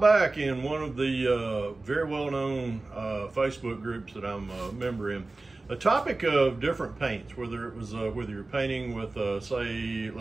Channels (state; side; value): quieter; left; 3.3 dB